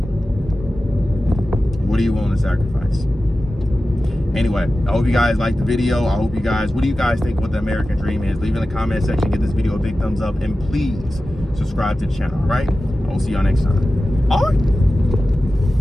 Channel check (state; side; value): normal; both; correlation 0.94